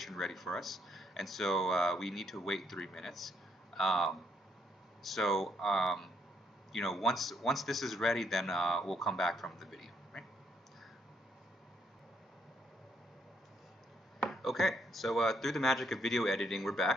ready for us, and so we need to wait 3 minutes. Um, so once this is ready, then we'll come back from the video. Right? Okay, so through the magic of video editing, we're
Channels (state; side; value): normal; both; correlation 0.71